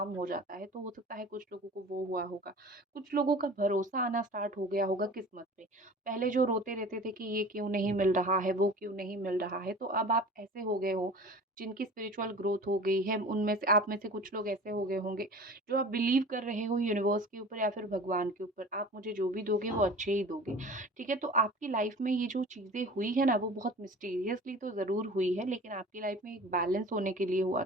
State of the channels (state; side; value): normal; both; correlation 0.40